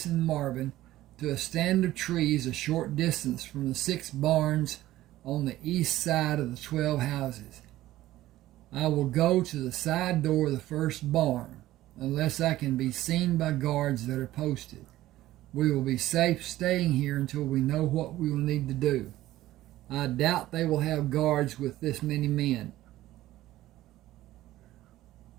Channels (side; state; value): left; quieter; 15.3 dB